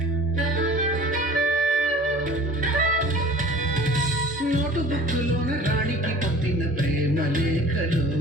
నోటుబుక్కులోన రాణికి పంపిన ప్రేమ లేఖలు,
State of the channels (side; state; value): both; normal; correlation 0.45